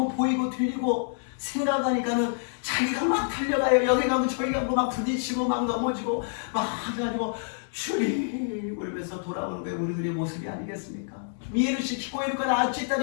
보이고 들리고 생각하니까는 자기가 막 달려가요. 여기 가고 저기 가고 막 부딪히고 막 넘어지고 막 해가지고 주님 울면서 돌아오는 게 우리들의 모습이 아니겠습니까? 見えるし聞こえるからあっち行った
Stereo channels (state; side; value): silent; right; digital silence